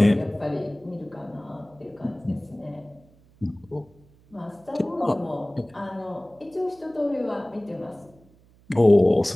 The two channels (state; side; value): noise; right; hum, 29 dB below the sound